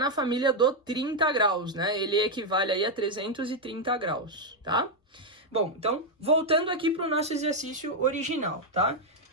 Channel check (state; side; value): normal; both; correlation 0.01